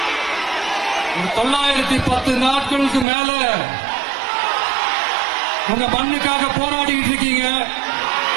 910 நாட்களுக்கு மேல உங்க மண்ணுக்காக போராடிட்டு இருக்கீங்க.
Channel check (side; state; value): left; drops out; at 3.1 s